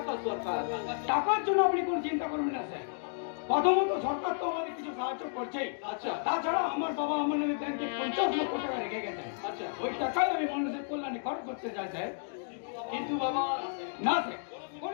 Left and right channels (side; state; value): right; silent; digital silence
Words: দরকার। টাকার জন্য আপনি কোনো চিন্তা করবেন না স্যার। প্রথমত সরকার তো আমাদের কিছু সাহায্য করছেই। আচ্ছা। তাছাড়া আমার বাবা আমার নামে ব্যাংকে 50 লক্ষ টাকা রেখে গেছেন। আচ্ছা। ওই টাকায় আমি মানুষের কল্যাণে খরচ করতে চাই স্যার। কিন্তু বাবা, না স্যার,